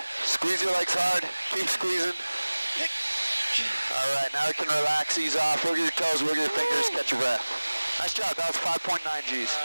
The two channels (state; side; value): inverted; both; correlation -1.00